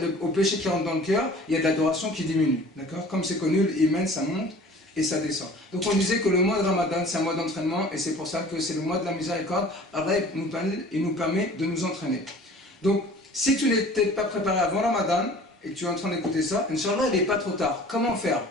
au péché qui rentre dans le cœur, il y a de l'adoration qui diminue. D'accord? Comme c'est connu, l'iman, ça monte et ça descend. Donc on disait que le mois de Ramadan, c'est un mois d'entraînement, et c'est pour ça que c'est le mois de la miséricorde. Allah, il nous permet de nous entraîner. Donc, si tu n'étais pas préparé avant Ramadan, et que tu es en train d'écouter ça, Inch'Allah, il n'est pas trop tard. Comment faire?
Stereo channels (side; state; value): both; normal; correlation 0.46